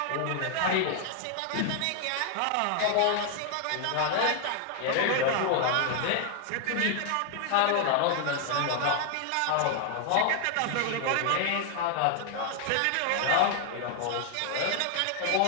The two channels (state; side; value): different; both; correlation 0.00